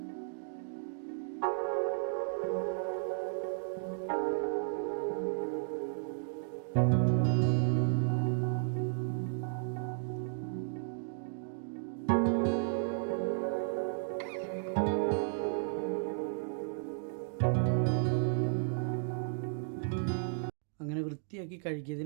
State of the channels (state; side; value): silent; left; digital silence